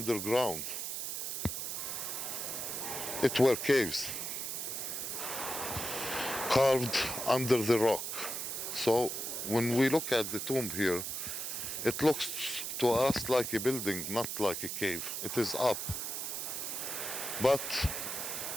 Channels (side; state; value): right; noise; hiss, 3 dB below the sound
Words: It were caves carved under the rock. So when we look at the tomb here, it looks to us like a building, not like a cave. It is up. But